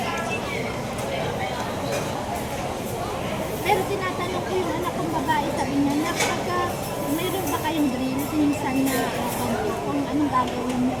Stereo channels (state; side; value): identical; both; correlation 1.00